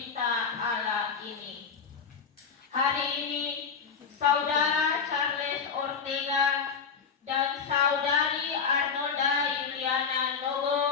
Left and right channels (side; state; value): right; quieter; 6.0 dB